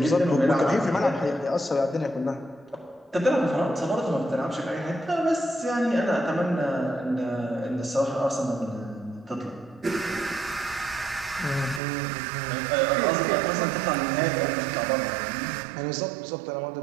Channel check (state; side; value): drops out; left; at 11.8 s